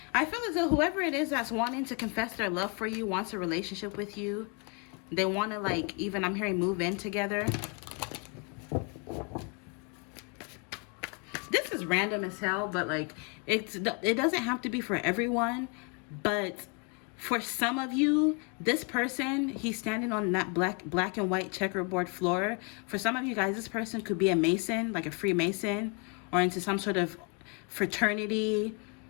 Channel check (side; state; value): right; quieter; 33.9 dB